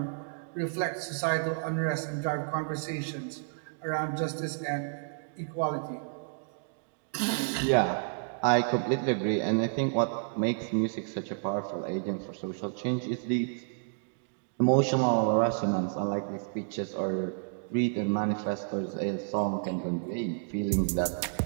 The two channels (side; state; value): left; silent; digital silence